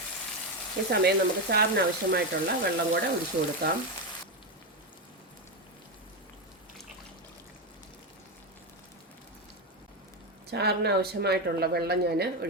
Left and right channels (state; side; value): normal; both; correlation 0.11